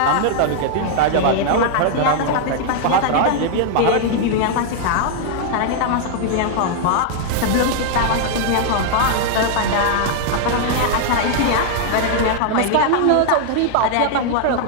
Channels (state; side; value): different; both; correlation 0.00